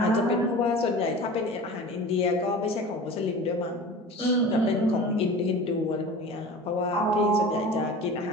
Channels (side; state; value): both; normal; correlation 0.37